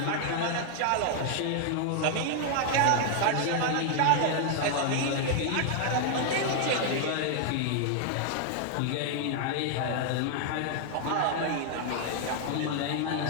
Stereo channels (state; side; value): different; both; correlation 0.00